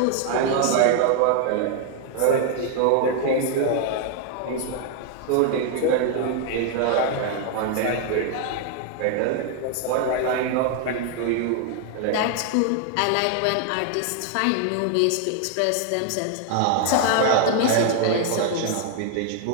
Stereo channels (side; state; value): both; different; correlation 0.00